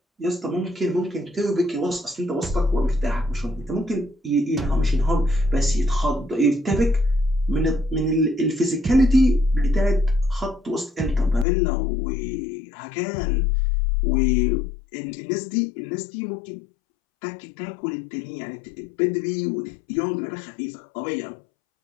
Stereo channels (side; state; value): right; drops out; at 11.5 s